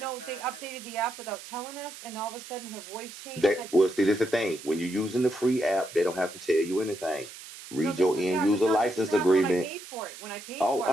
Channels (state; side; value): noise; right; hiss, 15 dB below the sound